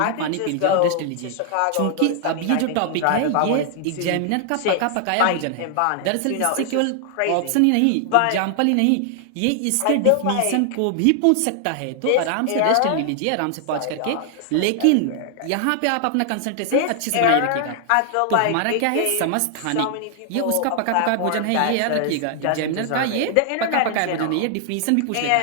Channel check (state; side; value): different; both; correlation 0.00